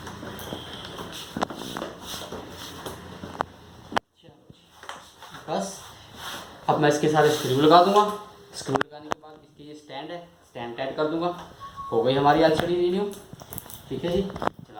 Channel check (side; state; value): both; identical; correlation 1.00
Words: बस अब मैं इसके सारे स्क्रू लगा दूंगा। स्क्रू लगाने के बाद इसकी ये स्टैंड है, स्टैंड टाइट कर दूंगा। हो गई हमारी एलसीडी रिन्यू। ठीक है जी,